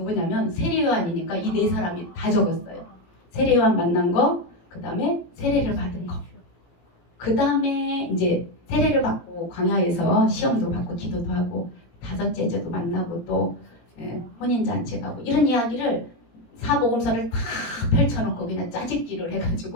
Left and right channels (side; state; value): right; late; 17 ms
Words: 세례 요한이니까 이 4사람이 다 적었어요. 세례 요한 만난 거, 그 다음에 세례를 받은 거. 그 다음에 이제 세례를 받고 광야에서 시험도 받고 기도도 하고 5째 제도 만나고 또 혼인잔치 가고 이런 이야기를 사복음서를 다 펼쳐놓고 그냥 짜집기를